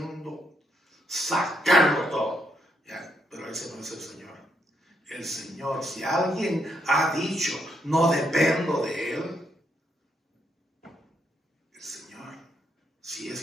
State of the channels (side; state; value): both; normal; correlation 0.77